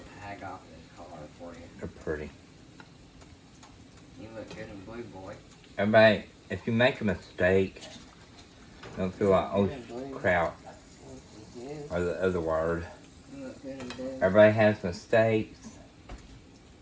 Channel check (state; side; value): identical; both; correlation 1.00